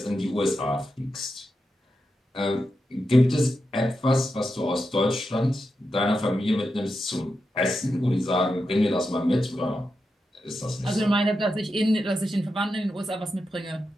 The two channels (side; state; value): both; normal; correlation 0.88